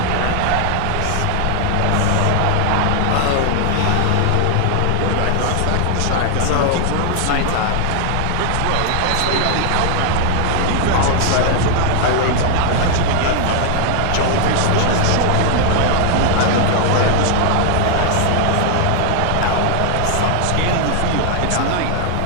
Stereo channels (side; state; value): both; different; correlation 0.00